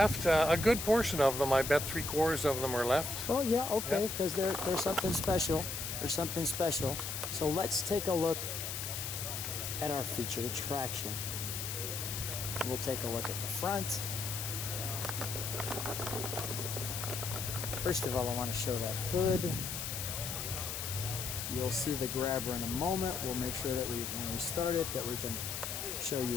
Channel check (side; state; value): left; noise; hiss, 4 dB below the sound